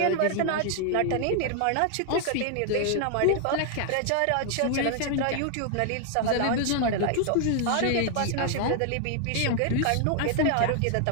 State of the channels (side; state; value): both; different; correlation 0.00